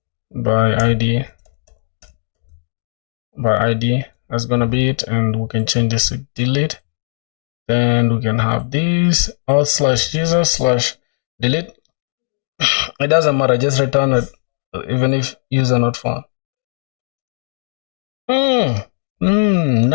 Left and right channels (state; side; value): silent; right; digital silence